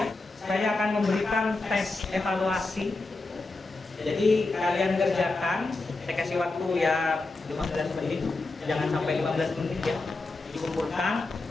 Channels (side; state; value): right; quieter; 3.4 dB